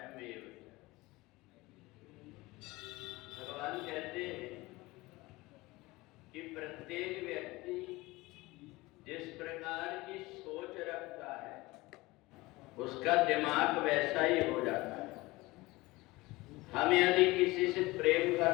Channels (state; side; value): quieter; right; 21.0 dB